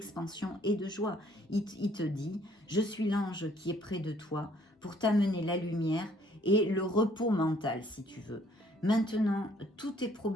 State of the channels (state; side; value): normal; both; correlation 0.62